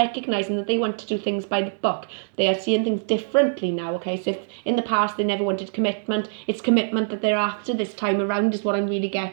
that they want to do things by the book. They are seeing things differently now, okay? So if in the past they never wanted commitment, it's commitment that they're after this time around is what I'm really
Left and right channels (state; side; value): silent; left; digital silence